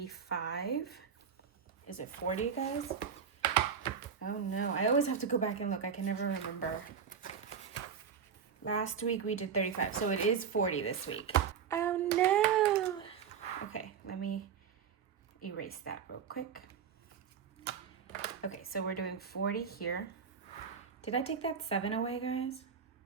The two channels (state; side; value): quieter; left; 7.0 dB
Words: Is it $40, guys? Oh no, I always have to go back and look. I can never remember. Last week we did $35, so it is $40 this week. Oh no. Okay, let me erase that real quick. Okay, so we're doing $40 here. Did I take that 7 away, guys?